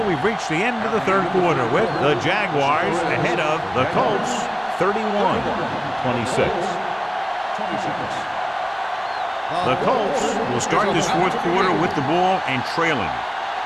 we've reached the end of the third quarter with the Jaguars ahead of the Colts 31-26. The Colts will start this fourth quarter with the ball and trailing.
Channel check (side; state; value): both; identical; correlation 1.00